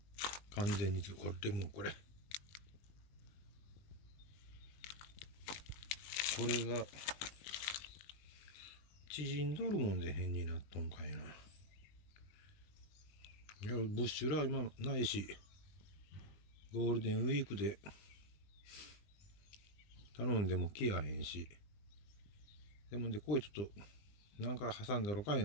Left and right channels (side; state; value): right; late; 20 ms